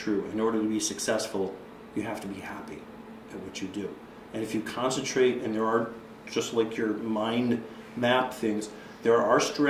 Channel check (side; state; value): both; identical; correlation 1.00